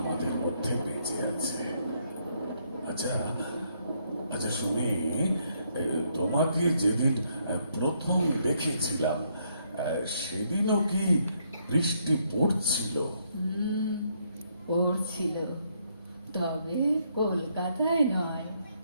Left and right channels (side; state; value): both; inverted; correlation -0.73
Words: মধ্যে বেঁচে আছে। আচ্ছা আচ্ছা শুনি, তোমাকে যেদিন প্রথম দেখেছিলাম সেদিনও কি বৃষ্টি পড়ছিল? পড়ছিল, তবে কলকাতায় নয়,